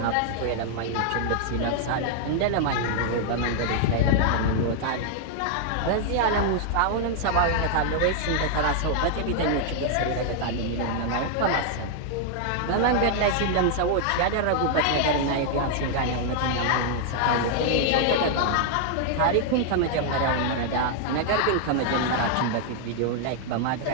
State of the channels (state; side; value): different; both; correlation 0.00